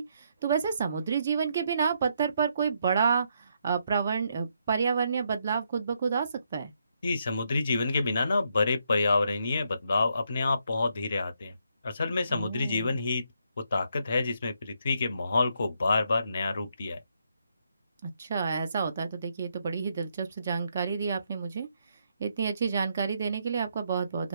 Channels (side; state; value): both; inverted; correlation -0.76